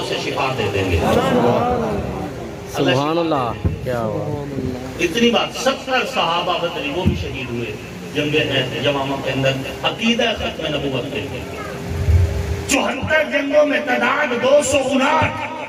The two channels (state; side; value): identical; both; correlation 1.00